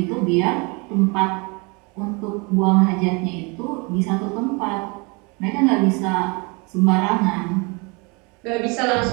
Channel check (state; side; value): quieter; left; 29.9 dB